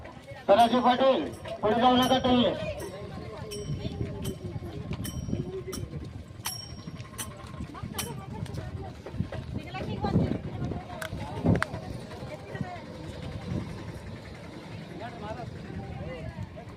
सदाशिव पाटील पुढे जाऊ नका तुम्ही.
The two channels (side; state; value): both; identical; correlation 1.00